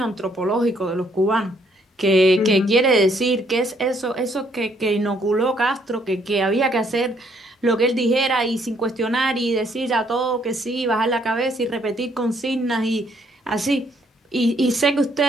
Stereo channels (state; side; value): normal; both; correlation 0.68